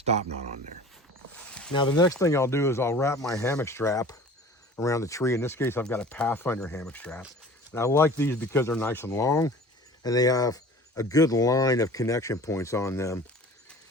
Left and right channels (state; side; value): normal; both; correlation 0.43